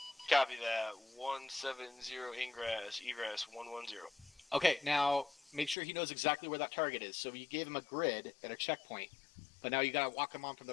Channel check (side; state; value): right; drops out; at 5.8 s